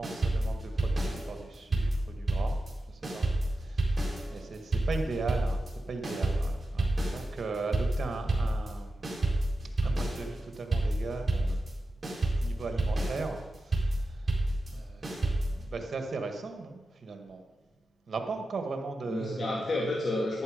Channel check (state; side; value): normal; both; correlation 0.91